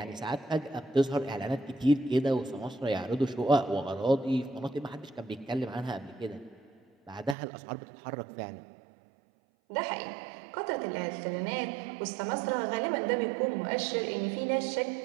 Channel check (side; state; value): left; drops out; at 7.4 s